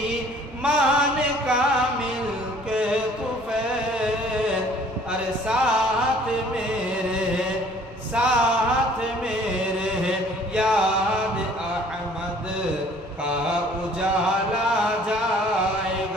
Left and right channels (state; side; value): normal; both; correlation 0.55